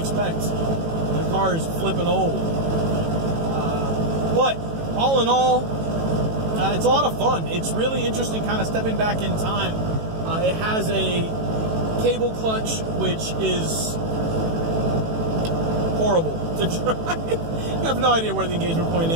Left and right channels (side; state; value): left; late; 18 ms